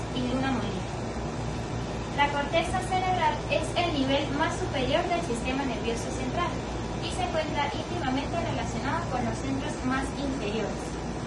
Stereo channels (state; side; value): identical; both; correlation 1.00